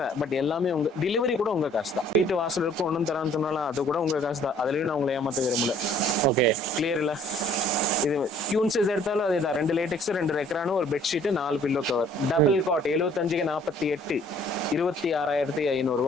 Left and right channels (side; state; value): both; normal; correlation 0.57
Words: பட் எல்லாமே உங்க டெலிவரி கூட உங்க காசு தான். வீட்டு வாசலுக்கு ஒன்றும் தரான்னு சொன்னாலும் அது கூட உங்க காசு தான். அதுலயும் நான் உங்களை ஏமாத்த விரும்பல. ஓகே, கிளியர் இல்ல? இது கியூன் சைஸ் எடுத்தாலும் அதேதான். 2 லேட்டெக்ஸ், 2 ரெக்ரானு, ஒரு bedsheet, 4 pillow cover, double cot 75க்கு 48, 26,500